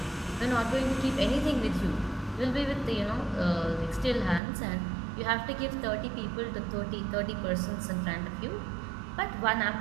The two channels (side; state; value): left; drops out; at 4.4 s